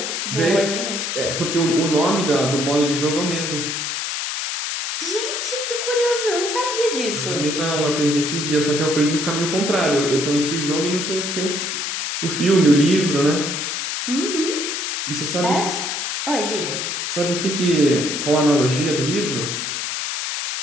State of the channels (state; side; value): noise; left; hiss, 2 dB below the sound